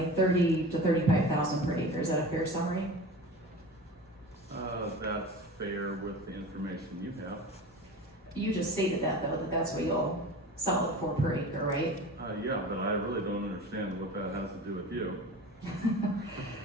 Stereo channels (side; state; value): both; normal; correlation 0.34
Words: $30,000 to $35,000 per acre. Is that a fair summary? That's fair with the information you have. You just stated that though, that that's what you'll sell it for per acre, right? Yeah, but I really don't understand what that has to do with you.